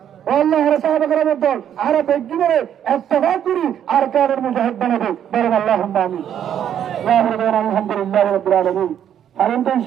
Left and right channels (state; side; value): quieter; left; 9.7 dB